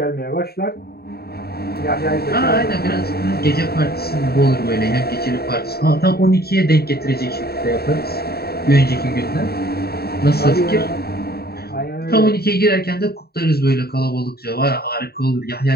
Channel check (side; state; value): right; late; 0.46 ms